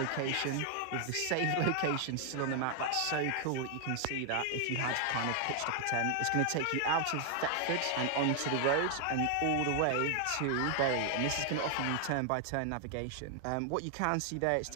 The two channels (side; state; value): both; different; correlation 0.00